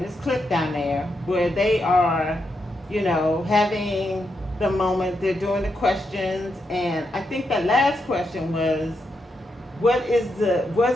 It's clipped down there where they are, having the moment. They're doing the questions, and I think that last question was, what is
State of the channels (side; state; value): both; normal; correlation 0.83